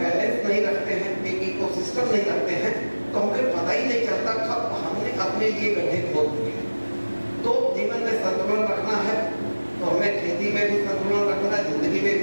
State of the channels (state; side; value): inverted; both; correlation -1.00